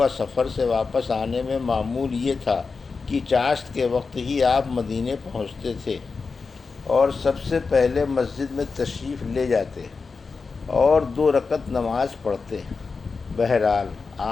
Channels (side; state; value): right; quieter; 4.6 dB